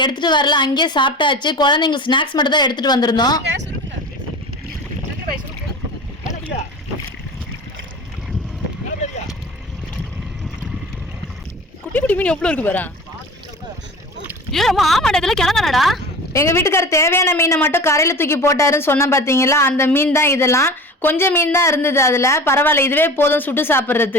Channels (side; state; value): both; normal; correlation 0.36